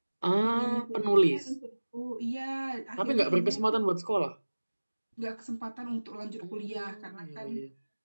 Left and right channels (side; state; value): both; inverted; correlation -1.00